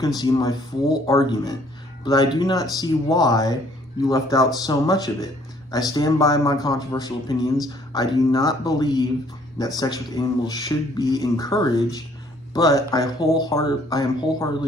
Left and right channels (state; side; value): normal; both; correlation 0.61